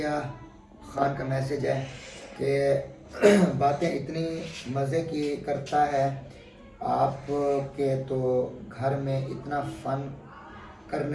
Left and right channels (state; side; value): identical; both; correlation 1.00